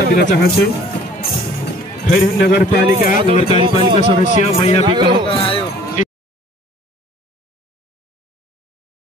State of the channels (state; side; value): normal; both; correlation 0.52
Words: दिन चाहन्छु। खैरहन नगरपालिका सदस्य मैया बिक